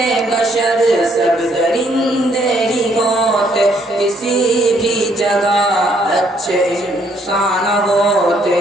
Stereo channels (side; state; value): both; normal; correlation 0.68